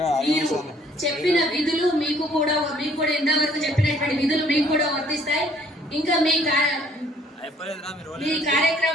మీరు చెప్పిన విధులు మీకు కూడా ఇంతవరకు చెప్పినటువంటి విధులు మీకు కూడా వర్తిస్తాయి. ఇంకా మీ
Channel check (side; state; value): both; normal; correlation 0.60